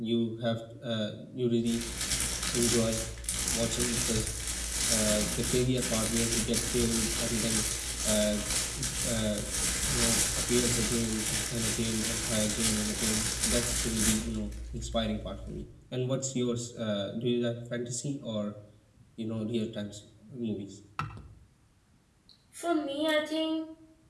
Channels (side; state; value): both; identical; correlation 1.00